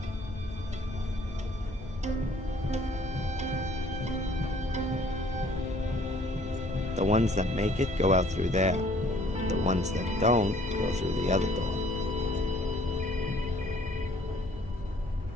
The ones that make it go out through there. The ones that don't go through the other door.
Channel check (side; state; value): both; normal; correlation 0.58